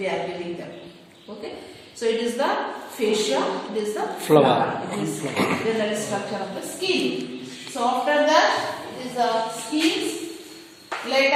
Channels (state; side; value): identical; both; correlation 1.00